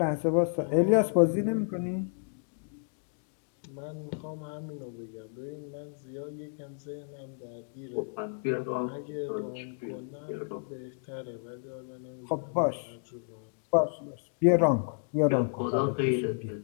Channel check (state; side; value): silent; right; digital silence